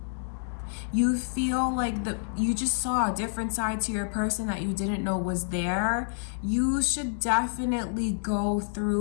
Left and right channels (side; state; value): right; silent; digital silence